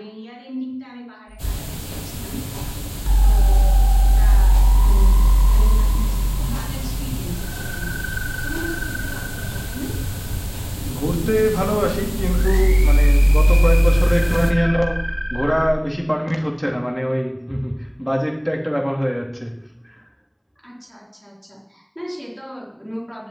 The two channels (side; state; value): both; identical; correlation 1.00